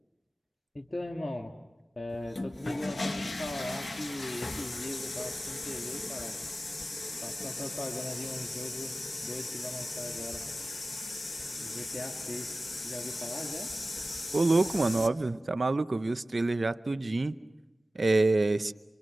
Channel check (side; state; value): both; normal; correlation 0.96